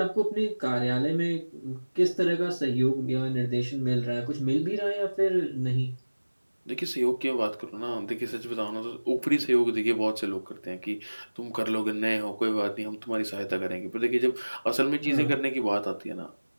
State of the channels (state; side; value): inverted; both; correlation -1.00